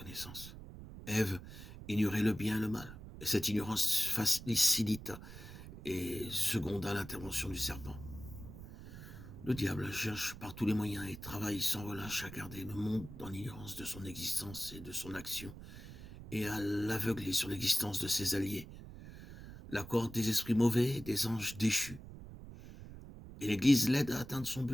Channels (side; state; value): right; noise; rumble, 13 dB below the sound